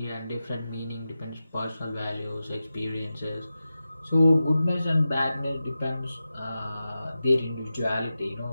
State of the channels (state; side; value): inverted; both; correlation -0.93